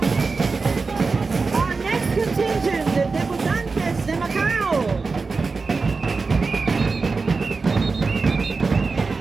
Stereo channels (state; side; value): quieter; left; 4.3 dB